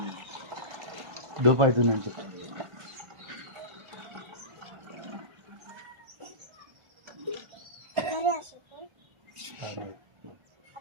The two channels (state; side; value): late; left; 1.4 ms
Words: డోప్ అవుతుందని చెప్పి